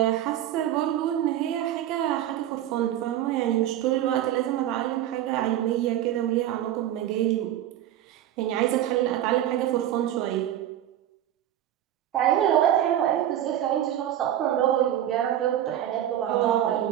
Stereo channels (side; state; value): left; quieter; 11.8 dB